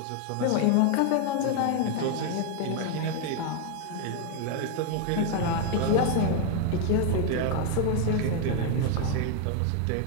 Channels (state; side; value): different; both; correlation 0.01